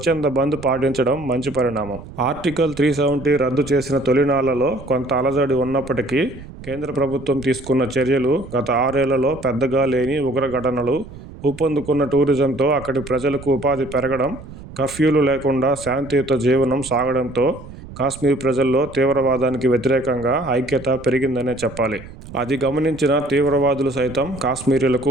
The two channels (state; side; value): noise; right; rumble, 15 dB below the sound